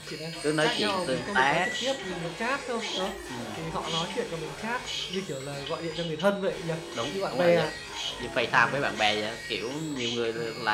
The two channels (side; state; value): both; identical; correlation 1.00